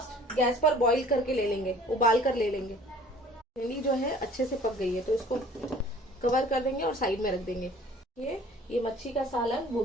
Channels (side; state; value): both; normal; correlation 0.50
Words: गैस पर बॉईल करके ले लेंगे, उबाल कर ले लेंगे। भिंडी जो है अच्छे से पक गई है, तो इसको कवर कर देंगे और साइड में रख देंगे। ये मच्छी का सालन वो